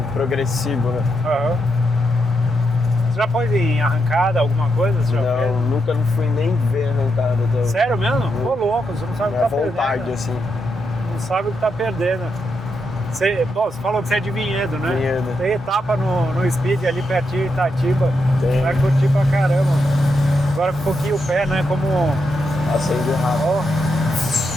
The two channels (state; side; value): normal; both; correlation 0.82